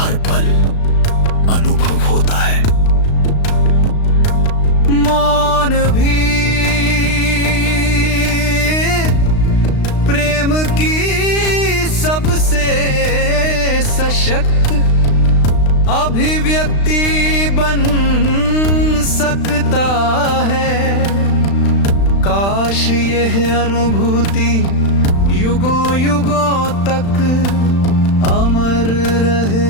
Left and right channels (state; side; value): late; right; 35 ms